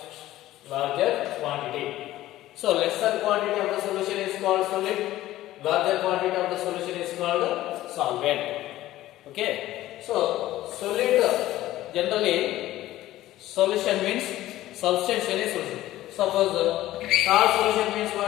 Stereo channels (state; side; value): quieter; right; 15.1 dB